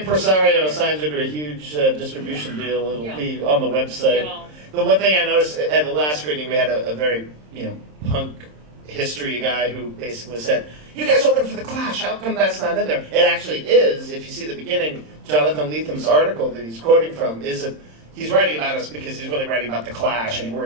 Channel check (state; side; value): late; left; 26 ms